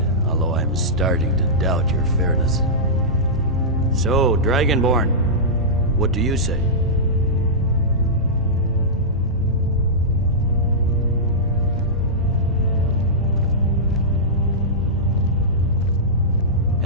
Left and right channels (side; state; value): both; normal; correlation -0.14